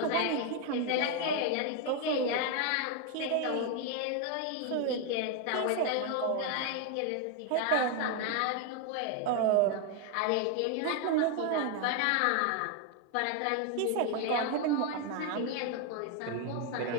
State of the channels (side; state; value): both; different; correlation 0.01